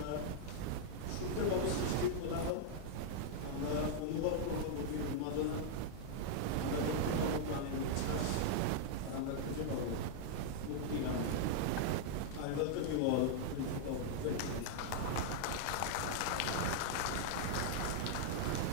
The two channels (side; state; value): both; different; correlation -0.01